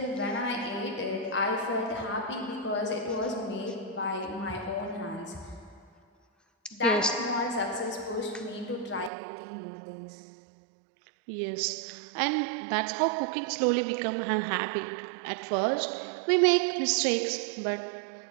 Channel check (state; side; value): drops out; left; at 9.1 s